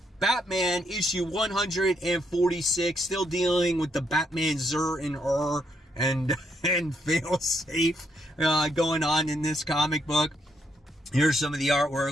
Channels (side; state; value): both; normal; correlation 0.76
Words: Batman issue 146. Still dealing with the Batman Zur and fail safe going on in this comic book. Here's some of the